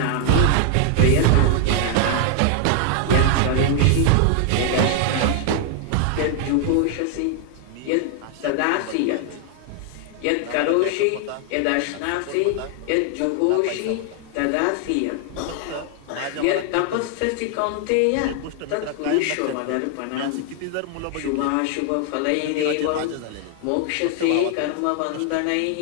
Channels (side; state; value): both; different; correlation 0.00